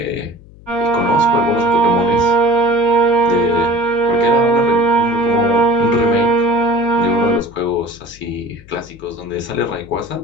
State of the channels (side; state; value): left; noise; hum, 22 dB below the sound